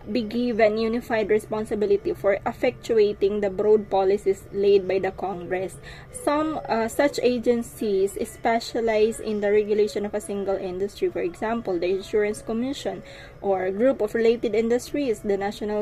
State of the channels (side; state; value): both; identical; correlation 1.00